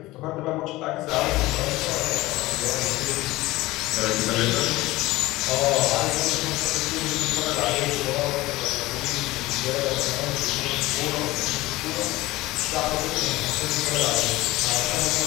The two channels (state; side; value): quieter; right; 19.0 dB